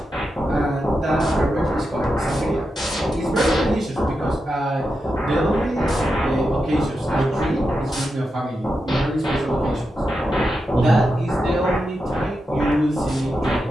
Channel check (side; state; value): both; normal; correlation 0.88